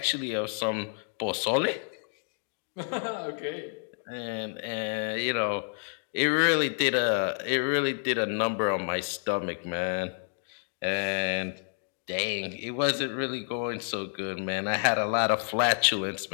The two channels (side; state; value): right; silent; 58 dB below the other